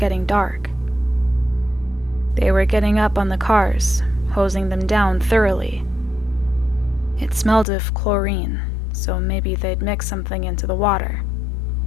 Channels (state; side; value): drops out; right; at 7.7 s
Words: dark. They were getting up on the cars, hosing them down thoroughly. It smelled of chlorine, so maybe they'd mix something into the water.